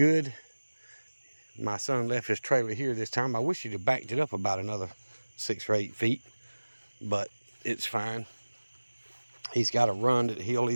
My son left his trailer here this time. I wish he'd have backed it up about another 6 or 8 feet, but it's fine. He's got a run that he'll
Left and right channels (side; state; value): both; inverted; correlation -1.00